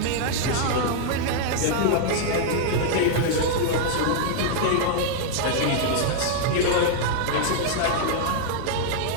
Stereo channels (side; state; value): both; different; correlation -0.01